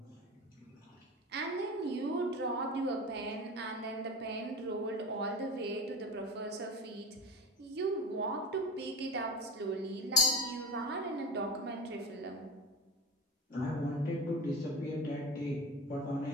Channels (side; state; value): both; normal; correlation 0.30